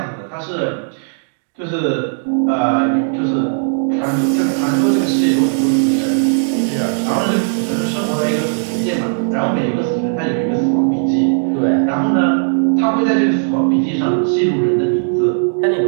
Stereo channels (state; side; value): silent; left; digital silence